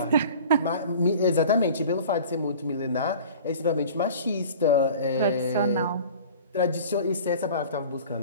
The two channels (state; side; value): inverted; both; correlation -0.42